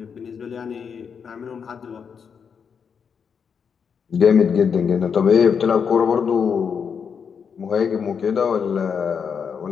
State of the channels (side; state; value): right; quieter; 6.6 dB